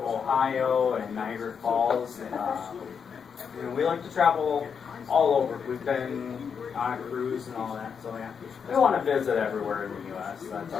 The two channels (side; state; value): right; quieter; 6.6 dB